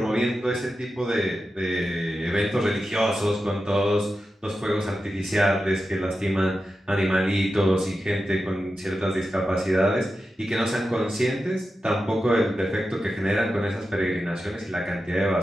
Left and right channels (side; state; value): both; normal; correlation 0.91